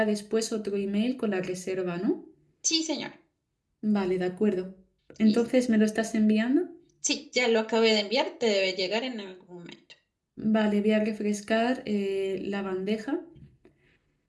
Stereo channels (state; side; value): identical; both; correlation 1.00